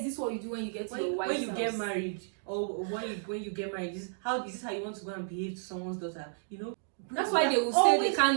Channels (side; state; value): left; silent; digital silence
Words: this what you do when you get to your wife's house? When you get married, or when you get married, is this how you want to go and behave to someone's daughter? You know. That's why they will say they